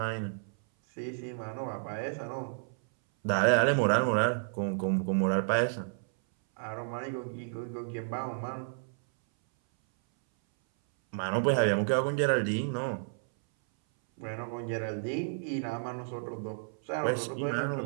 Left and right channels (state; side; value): silent; left; 57 dB below the other